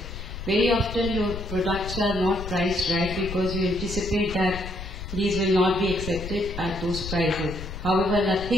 Very often your products are not priced right because you anticipate that these will not be accepted at those prices. However,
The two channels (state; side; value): noise; left; rumble, 9 dB below the sound